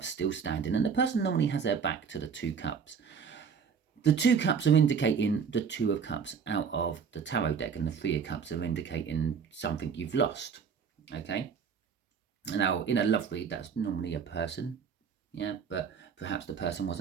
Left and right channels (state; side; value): quieter; left; 6.4 dB